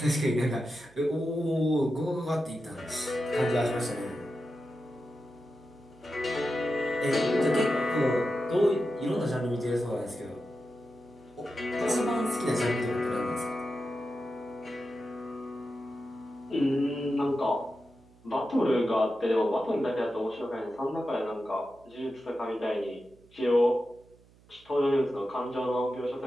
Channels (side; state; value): right; noise; hum, 28 dB below the sound